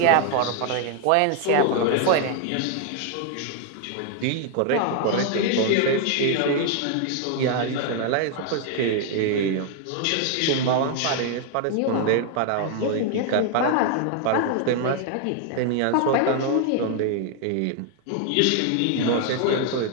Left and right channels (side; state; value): both; different; correlation 0.00